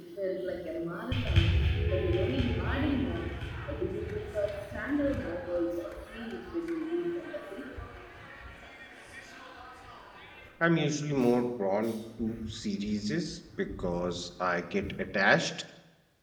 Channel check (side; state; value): both; identical; correlation 1.00